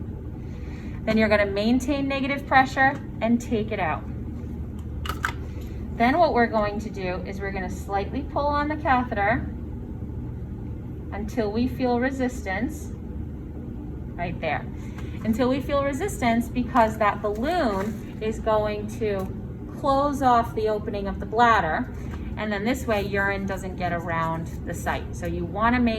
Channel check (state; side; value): identical; both; correlation 1.00